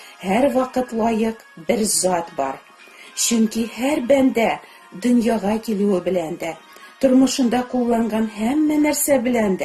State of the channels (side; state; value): both; identical; correlation 1.00